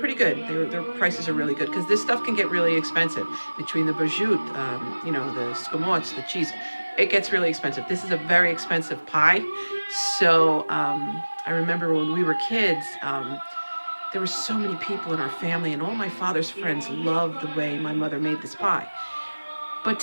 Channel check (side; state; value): both; inverted; correlation -1.00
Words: good. Their prices are really good because this stuff can get really expensive. Between the prosciutto, you know, the scamots, the cheese, it gets really expensive. This is a very expensive pie. So I remember when we were kids. There were so many people in our family, and all my father's friends loved the way my mother made this pie. But